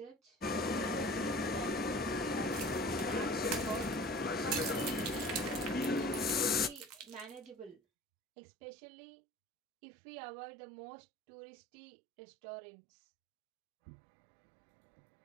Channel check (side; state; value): left; drops out; at 7.8 s